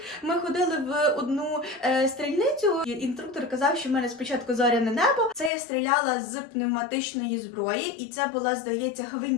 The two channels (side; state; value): right; drops out; at 5.5 s